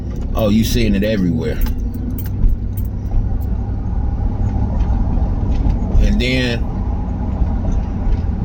oh, you seeing it everywhere. And then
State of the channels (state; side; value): identical; both; correlation 1.00